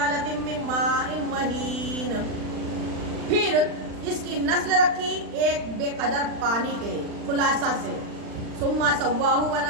من ماء مہین، پھر اس کی نسل رکھی ایک بے قدر پانی کے خلاصہ سے۔ ثم سواہ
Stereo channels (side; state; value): left; late; 39 ms